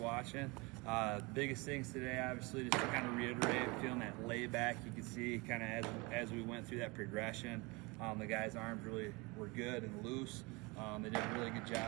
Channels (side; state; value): left; quieter; 26.4 dB